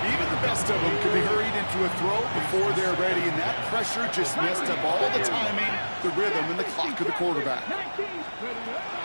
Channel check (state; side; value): inverted; both; correlation -1.00